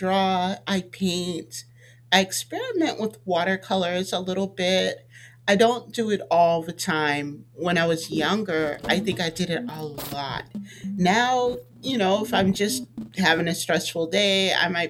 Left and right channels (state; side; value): identical; both; correlation 1.00